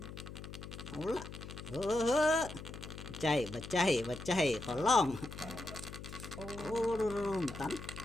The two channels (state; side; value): noise; left; hum, 11 dB below the sound